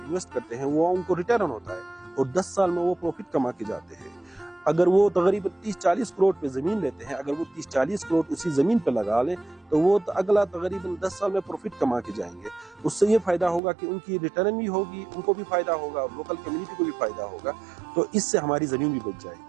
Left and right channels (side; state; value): left; drops out; at 13.6 s